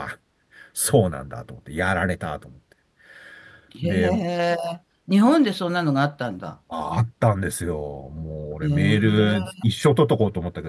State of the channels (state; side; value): identical; both; correlation 1.00